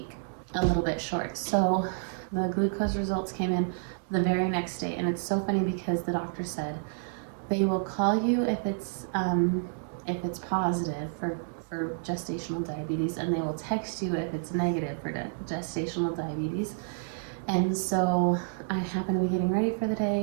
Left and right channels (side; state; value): left; silent; 58 dB below the other